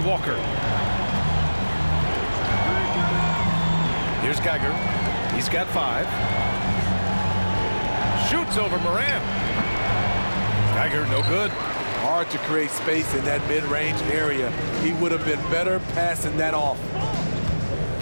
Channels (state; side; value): inverted; both; correlation -1.00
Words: Walker. Here's Geiger. He's got 5. Shoots over Morant. Geiger, no good. Hard to create space in that mid-range area. He would have been better passing that off.